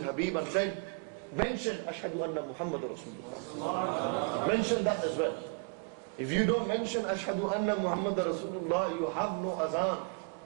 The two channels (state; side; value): quieter; left; 35.7 dB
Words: Habib and said, mention Ashhadu anna Muhammad Rasulullah. Mention that as well. If you don't mention Ashhadu anna Muhammad Rasulullah, you have no azan.